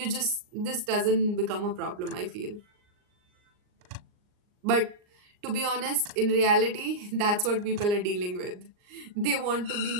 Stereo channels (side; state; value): left; late; 39 ms